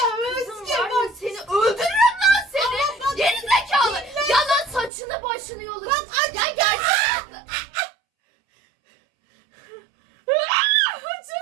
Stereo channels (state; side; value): drops out; left; at 4.9 s